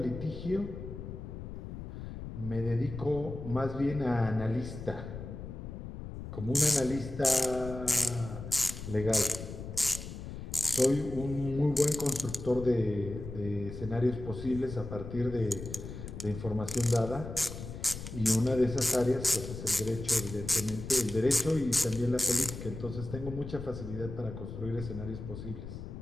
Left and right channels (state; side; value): noise; left; rumble, 9 dB below the sound